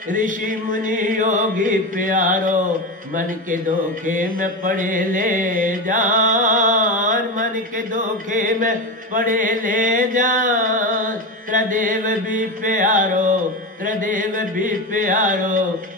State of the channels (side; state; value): both; normal; correlation 0.19